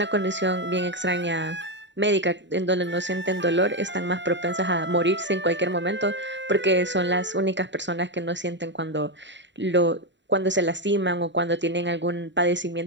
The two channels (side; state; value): left; late; 0.53 ms